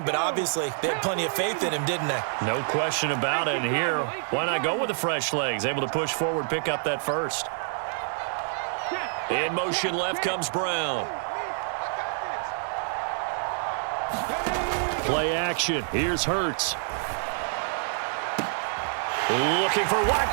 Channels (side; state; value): left; silent; digital silence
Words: but obviously they had plenty of faith in him, didn't they? No question about it. And here, why not go with the fresh legs? Able to push forward, pick up that first. In motion left comes Brown. Play action. Here's Hurts. Looking for